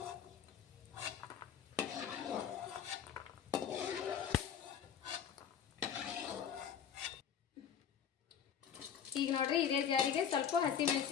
ಈಗ ನೋಡ್ರಿ ಇದೇ ಜಾರಿಗೆ ಸ್ವಲ್ಪ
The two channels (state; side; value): quieter; right; 8.2 dB